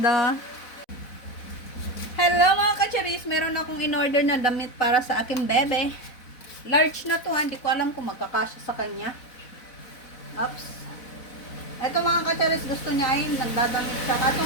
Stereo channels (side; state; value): right; late; 4.0 ms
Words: Hello mga kacharis. Meron akong in-order na damit para sa aking bebe. Large na to. Hindi ko alam kung magkakasya sa kanya. Oops. Ito mga kacharis, gusto niya ay nagdadamit siya. Ito